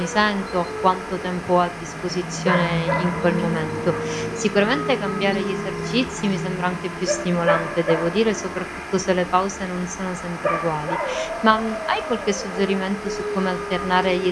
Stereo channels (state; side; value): identical; both; correlation 1.00